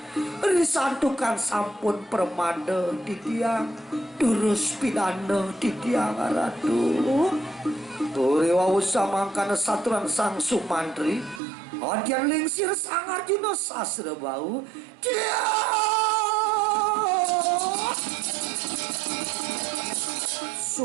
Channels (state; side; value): drops out; left; at 11.4 s